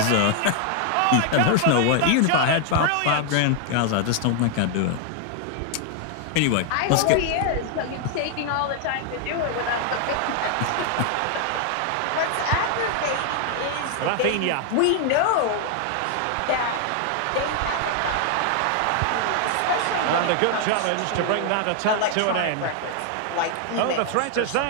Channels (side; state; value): both; different; correlation 0.00